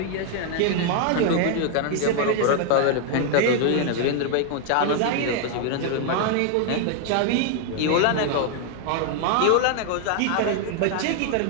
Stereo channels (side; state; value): both; different; correlation 0.00